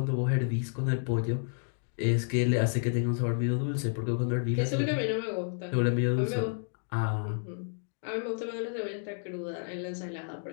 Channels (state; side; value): silent; right; digital silence